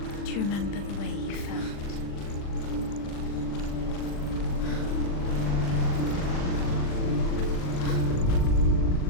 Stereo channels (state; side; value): late; right; 40 ms